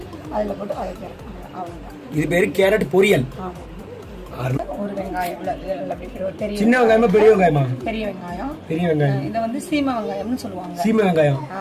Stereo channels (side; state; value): both; identical; correlation 1.00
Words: அதில் போட்டு வதக்கிறேன். அவ்வளோதான். இது பேரு கேரட் பொரியல். ஒரு வெங்காயம், சின்ன வெங்காயமா பெரிய வெங்காயமா? பெரிய வெங்காயம். இதை வந்து சீமை வெங்காயம்னு சொல்லுவாங்க. சீமை வெங்காயம்.